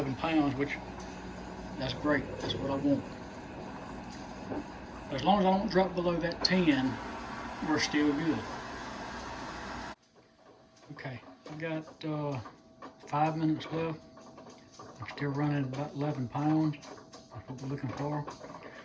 pounds, which that's great. That's what I want. As long as I don't drop below that 10, we're still good. Okay, I got 5 minutes left. I'm still running about 11 pounds. That's what we're looking for.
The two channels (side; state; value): both; identical; correlation 1.00